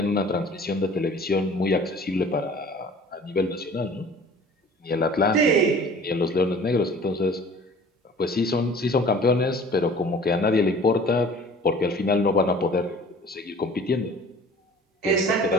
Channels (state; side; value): normal; both; correlation 0.47